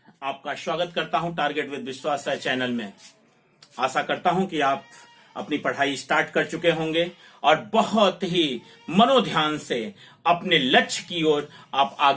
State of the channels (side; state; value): both; identical; correlation 1.00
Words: आपका स्वागत करता हूं टारगेट विद विश्वास राय चैनल में। आशा करता हूं कि आप अपनी पढ़ाई स्टार्ट कर चुके होंगे और बहुत ही मनोध्यान से अपने लक्ष्य की ओर आप